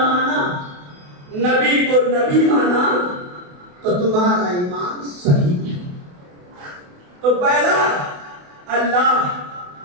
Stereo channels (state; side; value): late; left; 28 ms